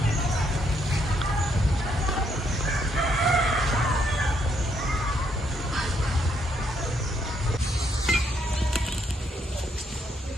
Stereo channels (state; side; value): normal; both; correlation 0.73